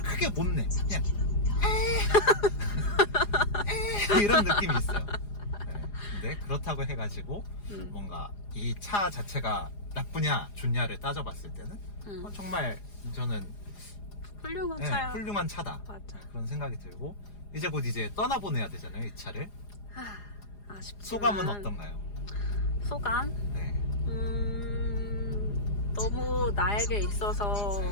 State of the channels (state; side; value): late; right; 4.9 ms